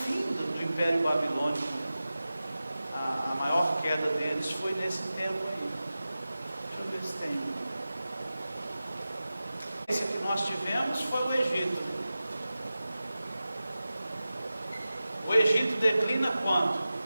do Império Babilônico. A maior queda deles foi nesse tempo aí. Deixa eu ver se tem. Esse que nós tivemos foi o Egito. O Egito declina quando?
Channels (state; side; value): inverted; both; correlation -0.95